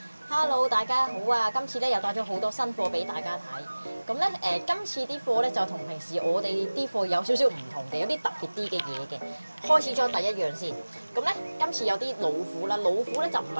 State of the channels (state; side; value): inverted; both; correlation -1.00